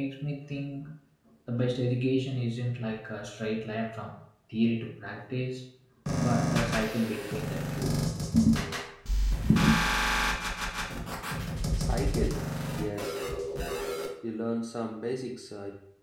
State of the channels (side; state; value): both; identical; correlation 1.00